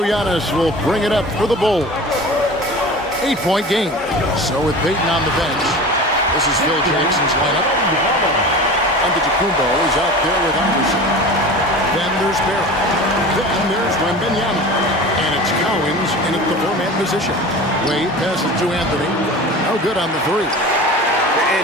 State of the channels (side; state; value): both; normal; correlation 0.35